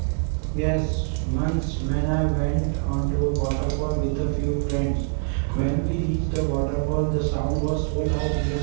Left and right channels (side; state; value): left; silent; 56 dB below the other